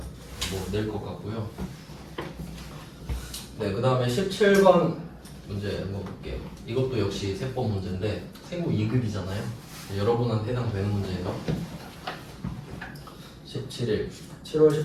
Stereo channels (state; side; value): identical; both; correlation 1.00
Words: 뭐 낼 것 같고요. 네, 그 다음에 17번 문제 한번 볼게요. 이것도 역시 세법 문제인데 생고 2급이잖아요. 여러분한테 해당되는 문제예요. 17일